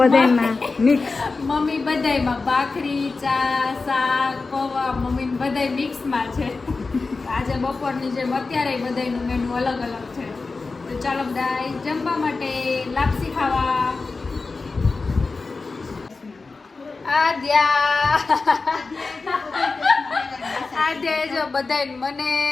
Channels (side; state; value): right; quieter; 4.0 dB